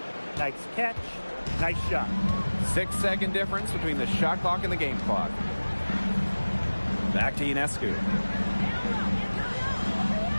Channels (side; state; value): both; inverted; correlation -1.00